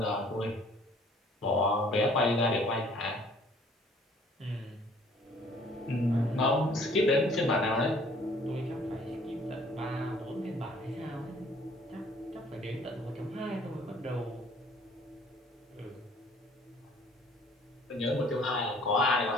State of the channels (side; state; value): both; normal; correlation 0.57